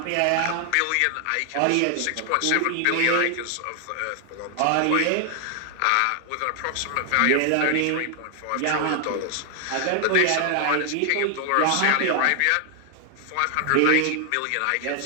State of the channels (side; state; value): both; different; correlation 0.00